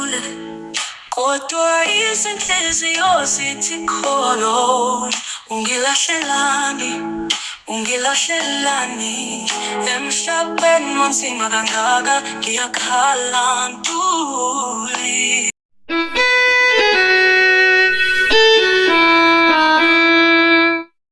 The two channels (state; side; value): identical; both; correlation 1.00